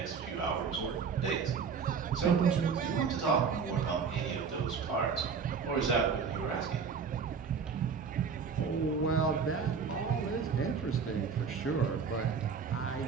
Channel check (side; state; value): left; quieter; 5.9 dB